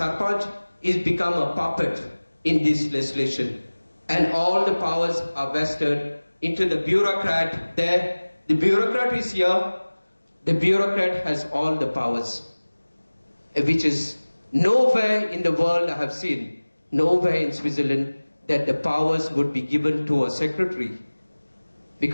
is become a puppet in this legislation. And all the powers are vested into the bureaucrat there. The bureaucrat is here. The bureaucrat has all the powers, which is nowhere in the world I have seen, nowhere in Switzerland, that the powers would be given to a secretary,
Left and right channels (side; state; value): both; inverted; correlation -1.00